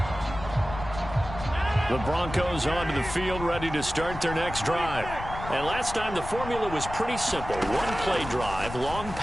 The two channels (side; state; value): left; noise; rumble, 10 dB below the sound